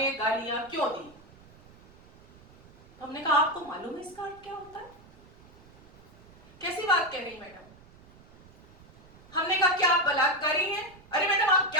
गालियां क्यों दी। हमने कहा आपको मालूम है इसका अर्थ क्या होता है? कैसी बात कह रही मैडम? हमने कहा क्या आप बलात्कारी हैं? अरे मैडम आप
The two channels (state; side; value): noise; right; rumble, 24 dB below the sound